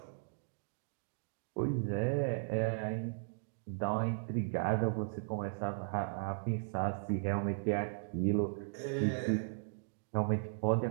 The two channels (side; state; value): left; silent; digital silence